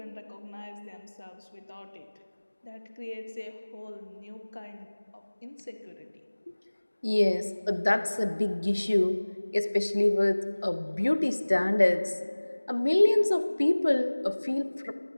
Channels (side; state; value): both; inverted; correlation -1.00